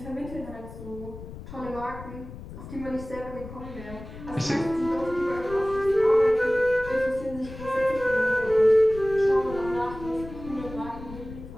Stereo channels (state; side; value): noise; left; rumble, 13 dB below the sound